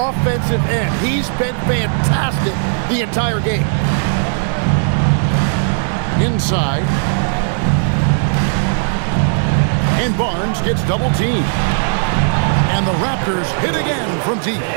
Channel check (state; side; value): silent; left; digital silence